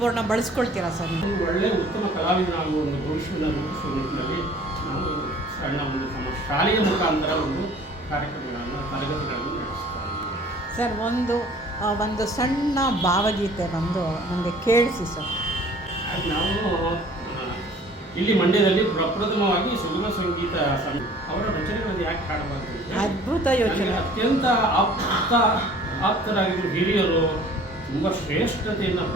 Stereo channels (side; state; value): both; normal; correlation 0.51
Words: ಬಳಸ್ಕೊಳ್ತೀರಾ ಸರ್? ಒಳ್ಳೆಯ ಉತ್ತಮ ಕಲಾವಿದನಾಗುವ ಒಂದು ಭವಿಷ್ಯವನ್ನು ರೂಪಿಸುವ ನಿಟ್ಟಿನಲ್ಲಿ ನಾವು ಸಣ್ಣ ಒಂದು ಶಾಲೆಯ ಮುಖಾಂತರ ಒಂದು ಕಾರ್ಯಕ್ರಮಗಳನ್ನು ತರಗತಿಗಳನ್ನು ನಡೆಸ್ತಾ ಇದ್ದೀವಿ. ಸರ್ ಒಂದು ಸಣ್ಣ ಭಾವಗೀತೆ ಬಂದು ನನಗೆ ಕೇಳಿಸಿ ಸರ್. ಅದು ನಾವು ಇಲ್ಲಿ ಮಂಡ್ಯದಲ್ಲಿ ಪ್ರಪ್ರಥಮವಾಗಿ ಸುಗಮ ಸಂಗೀತ ಅವರ ರಚನೆಗಳನ್ನು ಯಾಕೆ ಹಾಡಬಾರ್ದು ಅಂತ ಅದ್ಭುತ ಯೋಚನೆ. ಅತ್ಯಂತ ಆಪ್ತರಾಗಿದ್ದರು ಹಿರಿಯರು, ತುಂಬ ಶ್ರೇಷ್ಠತೆಯನ್ನು